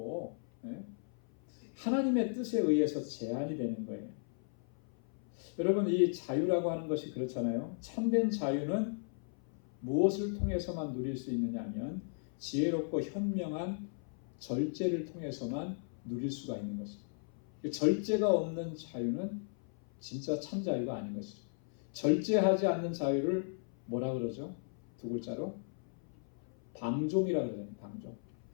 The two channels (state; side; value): silent; right; 54 dB below the other